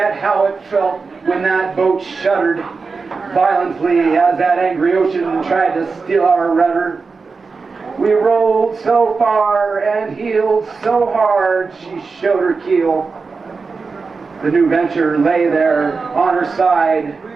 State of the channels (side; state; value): left; quieter; 4.6 dB